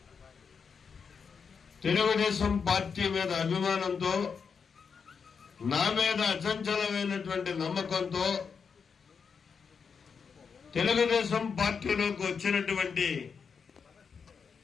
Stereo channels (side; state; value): right; quieter; 6.0 dB